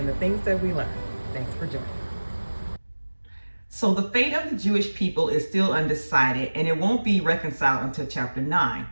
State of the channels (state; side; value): inverted; both; correlation -1.00